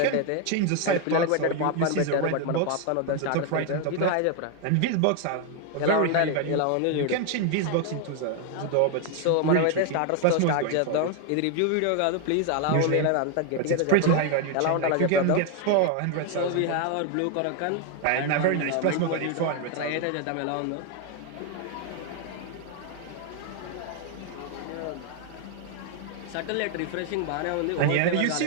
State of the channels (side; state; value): both; different; correlation 0.01